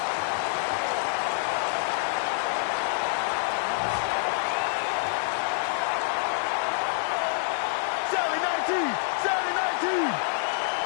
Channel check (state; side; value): silent; right; 60 dB below the other